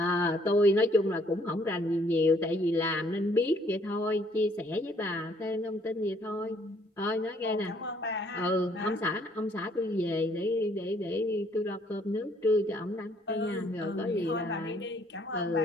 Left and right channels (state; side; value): normal; both; correlation 0.64